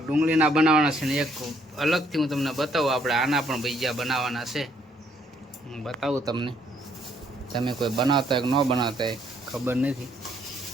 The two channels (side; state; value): both; normal; correlation 0.68